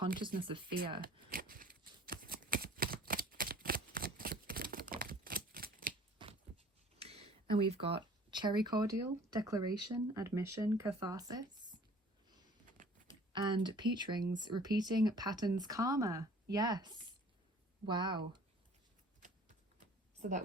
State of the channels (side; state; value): both; normal; correlation 0.51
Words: of fear. And we've got cherry cordial, declaration, admission, catharsis. And peach rings, repeating patterns, karma. Yes. Wow. So that